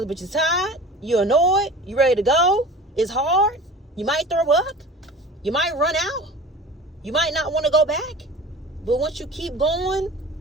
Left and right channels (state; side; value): normal; both; correlation 0.39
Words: but you're tired. You're annoyed. You ready to go. It's hard. You might throw up. You might run out. You might not want to go back. But once you keep going,